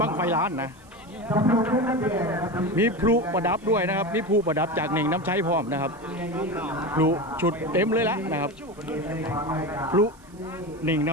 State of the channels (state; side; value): noise; right; hiss, 28 dB below the sound